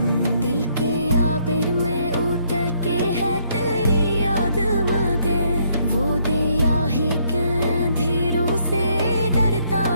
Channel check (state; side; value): inverted; both; correlation -0.69